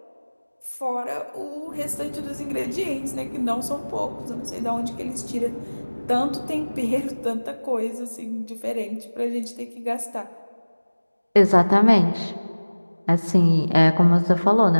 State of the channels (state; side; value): inverted; both; correlation -1.00